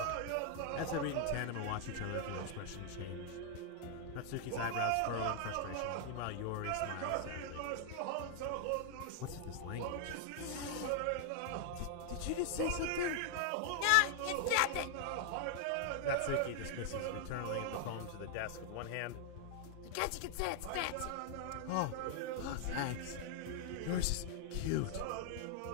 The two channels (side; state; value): both; different; correlation 0.00